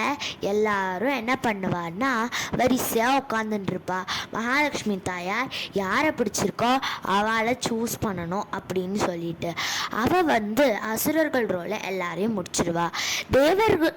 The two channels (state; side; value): identical; both; correlation 1.00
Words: எல்லாரும் என்ன பண்ணுவார்னா வரிசையாக உட்காந்துட்டுருப்பா. மகாலட்சுமி தாயார் யாரை பிடிச்சிருக்கோ அவளை சூஸ் பண்ணணும் அப்படின்னு சொல்லிட்டு அவள் அசுரர்கள் ரோலை எல்லாரையும் முடிச்சிடுவா.